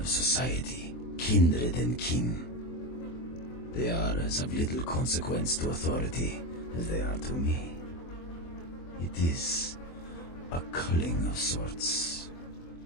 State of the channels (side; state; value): right; late; 24 ms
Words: society, kindred and kin. They are as of little consequence to authority as they are to me. It is a culling of sorts.